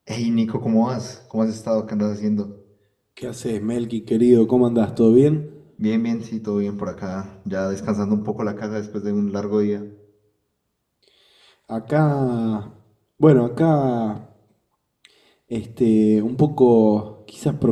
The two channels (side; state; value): both; identical; correlation 1.00